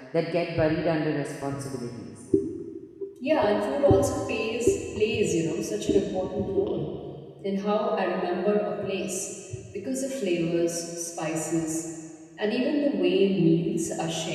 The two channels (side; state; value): both; identical; correlation 1.00